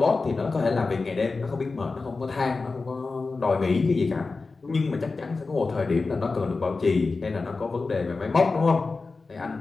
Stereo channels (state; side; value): quieter; right; 3.9 dB